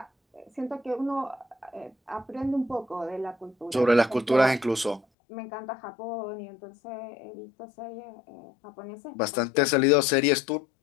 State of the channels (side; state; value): right; drops out; at 5.0 s